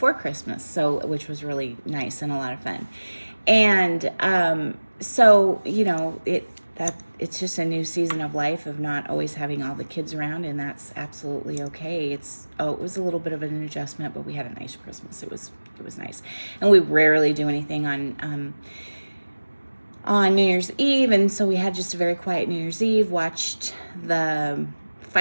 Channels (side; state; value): both; inverted; correlation -1.00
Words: Christmas, which was really nice and a lot of fun. And it's just a new season of life of not always having all the kids around, and that's absolutely okay. It was a little bit of an adjustment, but we had a nice Christmas. It was nice. And we rarely do anything on New Year's Eve, and so we had just a very quiet New Year's Eve, watched the